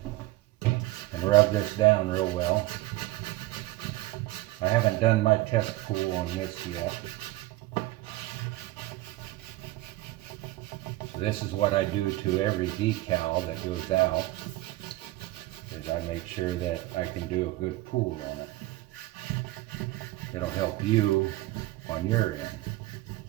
and rub this down real well. I haven't done my test pull on this yet. So this is what I do to every decal that goes out, is I make sure that I can do a good pull on it. It'll help you on your end.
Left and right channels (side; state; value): left; quieter; 17.9 dB